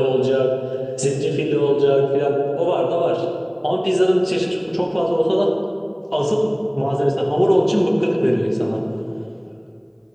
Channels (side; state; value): both; identical; correlation 1.00